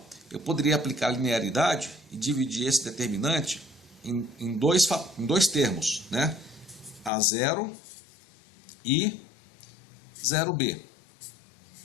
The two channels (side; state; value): right; drops out; at 7.1 s